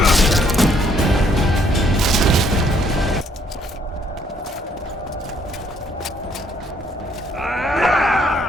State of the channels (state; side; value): normal; both; correlation 0.67